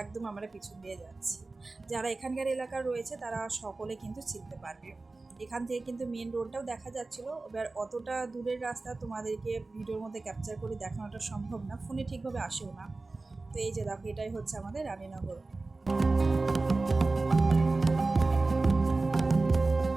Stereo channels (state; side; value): quieter; left; 3.4 dB